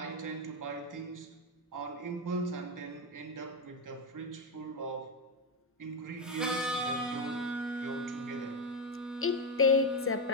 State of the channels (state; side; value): normal; both; correlation 0.07